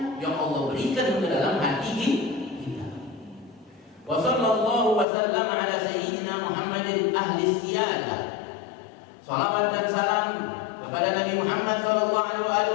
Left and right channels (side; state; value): right; drops out; at 5.1 s